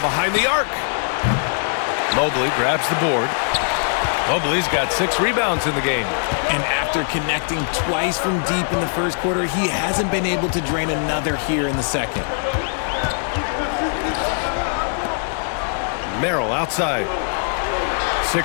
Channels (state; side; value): silent; right; digital silence